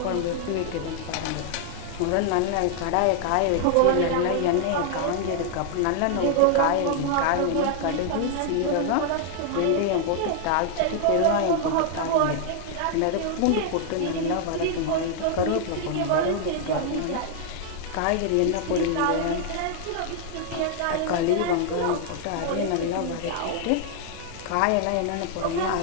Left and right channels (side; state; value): both; different; correlation 0.00